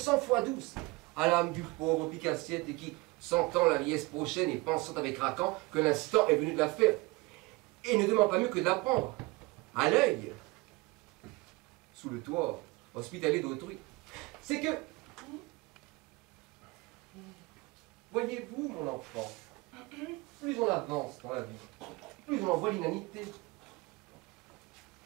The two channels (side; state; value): left; quieter; 24.0 dB